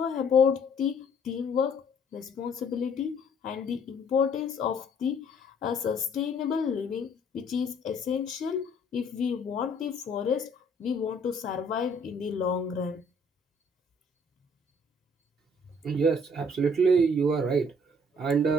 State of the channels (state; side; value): normal; both; correlation 0.60